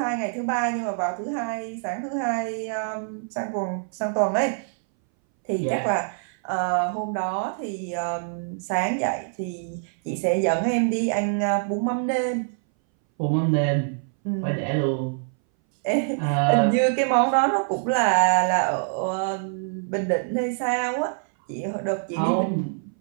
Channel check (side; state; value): left; silent; 61 dB below the other